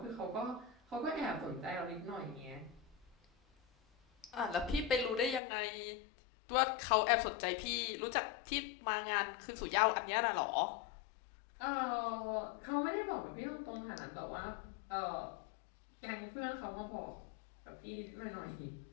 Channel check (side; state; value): right; drops out; at 5.4 s